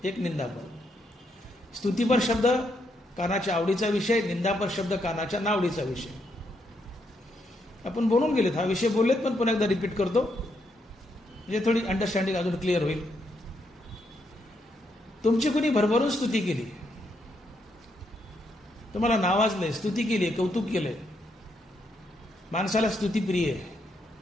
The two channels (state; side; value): normal; both; correlation 0.77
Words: एक निंदापर. स्तुतीपर शब्द कानाच्या आवडीचा विषय, निंदापर शब्द कानाच्या नावडीचा विषय. आपण बोलून गेलेत, हा विषय बोललेत, पण पुन्हा एकदा रिपीट करतो म्हणजे थोडी अंडरस्टँडिंग अजून क्लिअर होईल. तुमची कुणी भरभरून स्तुती केली, तुम्हाला नावाजलंय, स्तुती केली, कौतुक केलंय. माणसाला स्तुती प्रिय आहे.